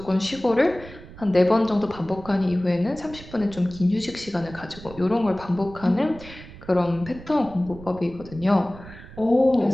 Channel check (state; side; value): noise; right; rumble, 17 dB below the sound